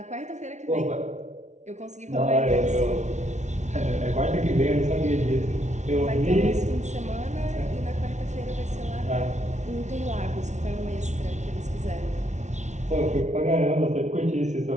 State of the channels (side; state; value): left; late; 0.33 ms